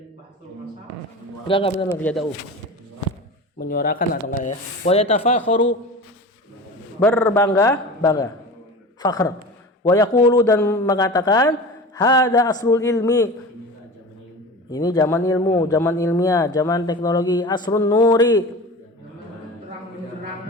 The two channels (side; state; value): both; normal; correlation 0.33